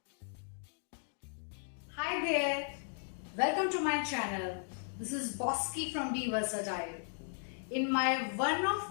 there, welcome to my channel. This is Bosky from Be Versatile. In my one of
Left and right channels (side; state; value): right; silent; digital silence